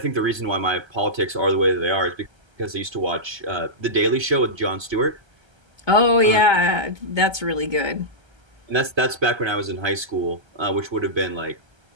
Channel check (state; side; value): late; left; 1.3 ms